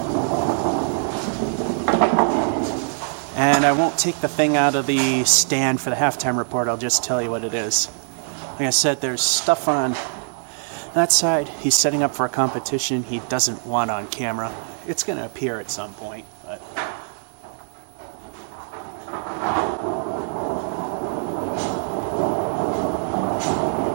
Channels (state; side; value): silent; left; digital silence